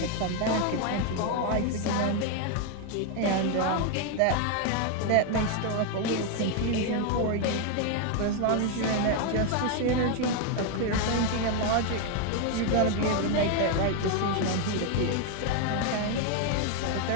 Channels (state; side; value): different; both; correlation 0.01